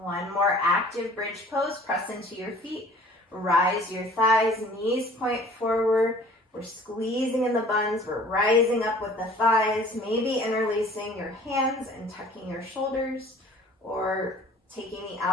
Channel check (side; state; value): both; normal; correlation 0.50